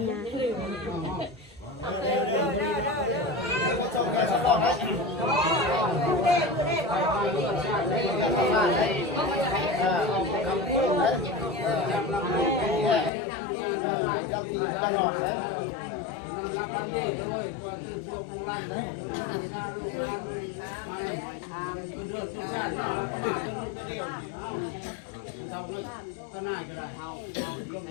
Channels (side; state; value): right; drops out; at 13.1 s